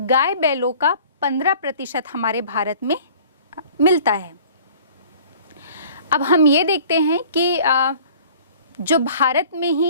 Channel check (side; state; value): both; inverted; correlation -0.49